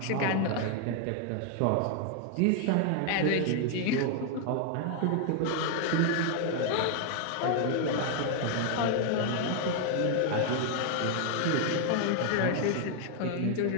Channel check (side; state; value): both; different; correlation 0.00